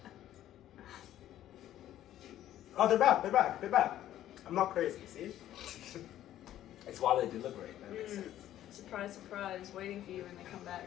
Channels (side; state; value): right; quieter; 12.5 dB